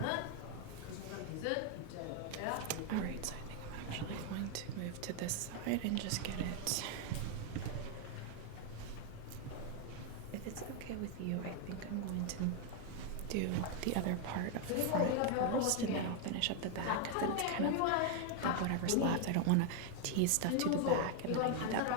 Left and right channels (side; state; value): both; different; correlation 0.01